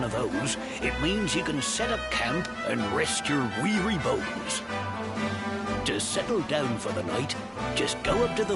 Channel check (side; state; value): both; identical; correlation 1.00